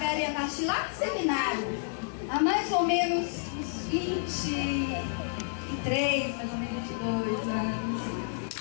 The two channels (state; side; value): silent; right; digital silence